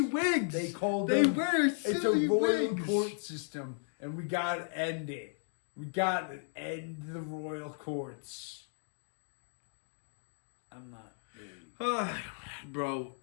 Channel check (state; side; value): silent; right; digital silence